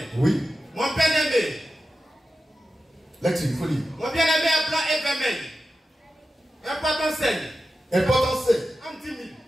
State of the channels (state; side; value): normal; both; correlation 0.92